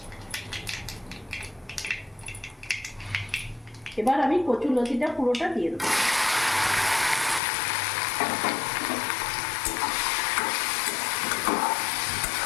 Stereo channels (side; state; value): right; drops out; at 7.4 s